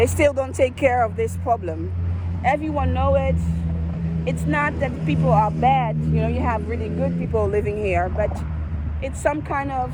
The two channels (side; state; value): both; identical; correlation 1.00